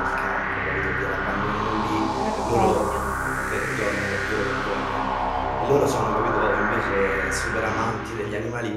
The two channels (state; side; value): identical; both; correlation 1.00